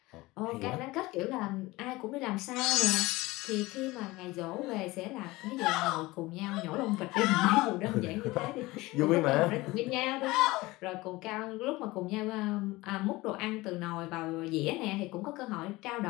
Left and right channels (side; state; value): right; quieter; 20.5 dB